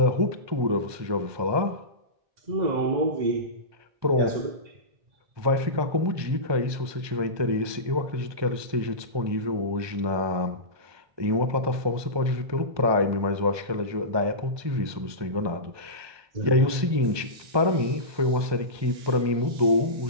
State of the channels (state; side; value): late; left; 1.2 ms